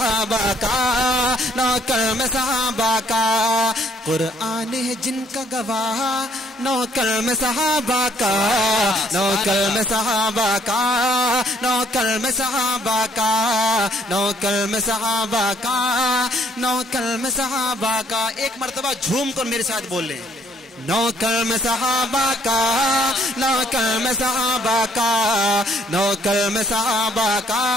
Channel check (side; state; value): both; normal; correlation 0.66